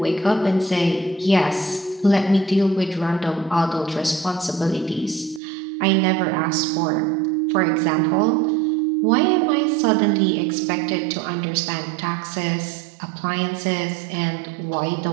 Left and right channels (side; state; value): left; drops out; at 5.4 s